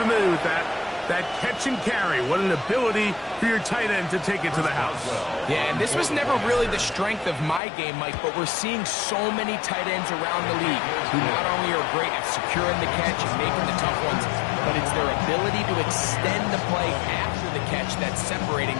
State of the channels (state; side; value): drops out; right; at 7.6 s